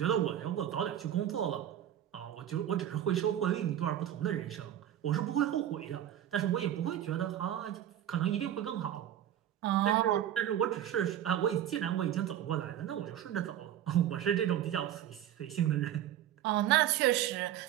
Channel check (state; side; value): quieter; left; 11.2 dB